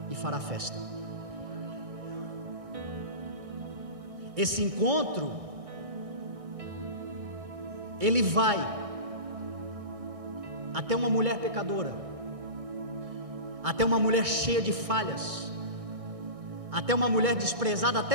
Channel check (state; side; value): late; left; 2.3 ms